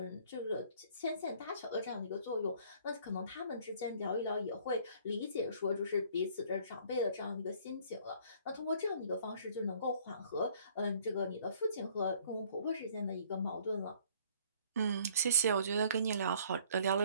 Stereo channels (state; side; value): inverted; both; correlation -0.58